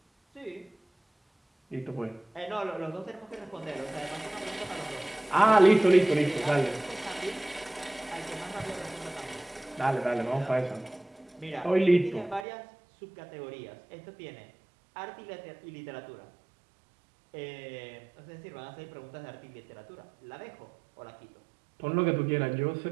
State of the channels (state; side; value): drops out; left; at 12.5 s